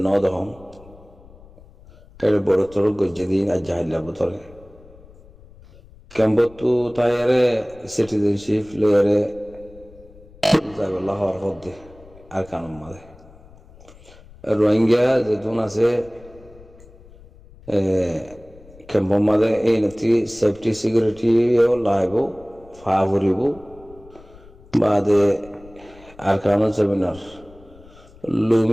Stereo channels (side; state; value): left; noise; rumble, 23 dB below the sound